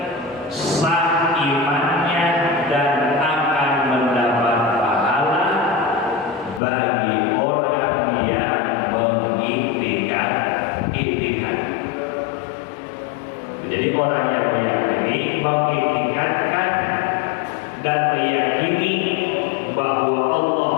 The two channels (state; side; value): drops out; right; at 6.6 s